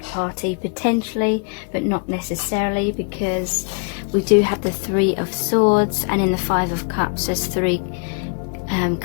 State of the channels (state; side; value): quieter; right; 38.0 dB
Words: party potentially, but not necessarily, because we do have the Three of Swords, and in the Five of Cups there's three